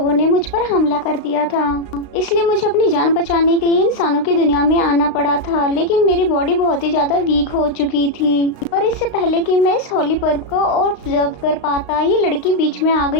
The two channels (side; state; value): right; late; 35 ms